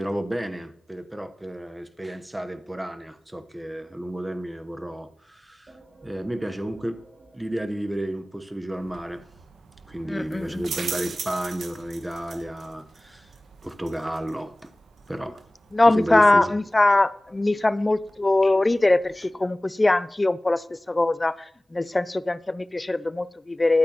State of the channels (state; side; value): normal; both; correlation 0.98